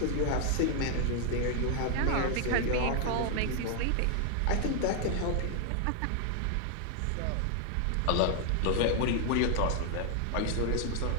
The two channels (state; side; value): different; both; correlation 0.00